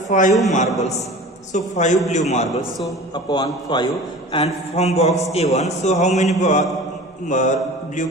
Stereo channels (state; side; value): normal; both; correlation 0.39